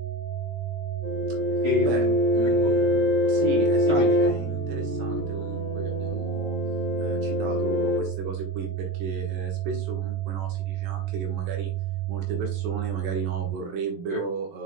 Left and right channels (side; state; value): left; late; 13 ms